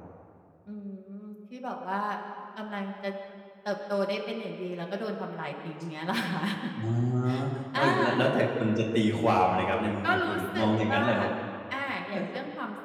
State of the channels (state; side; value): identical; both; correlation 1.00